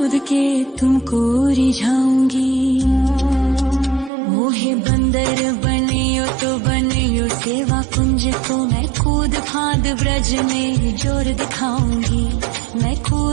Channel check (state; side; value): drops out; left; at 4.1 s